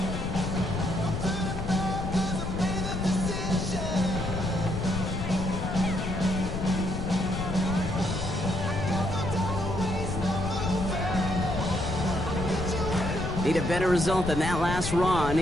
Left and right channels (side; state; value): left; noise; rumble, 4 dB below the sound